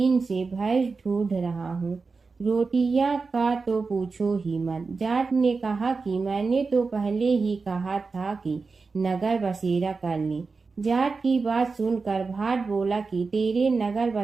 से भैंस ढूंढ रहा हूँ। रोटियां का तो पूछो ही मत। जाट ने कहा कि मैंने तो पहले ही कहा था कि नगर बसेरा कर ले। जाट की बात सुनकर भाट बोला कि तेरे नगर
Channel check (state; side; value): quieter; left; 4.4 dB